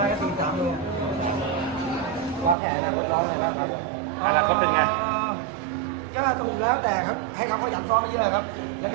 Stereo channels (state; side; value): drops out; left; at 2.6 s